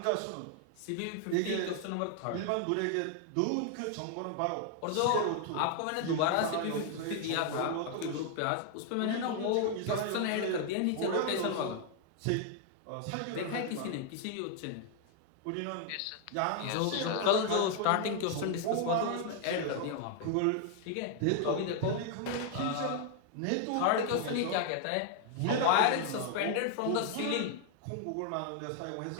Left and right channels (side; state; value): both; different; correlation 0.00